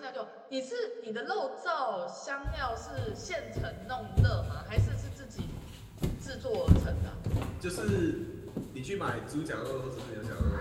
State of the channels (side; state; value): both; identical; correlation 1.00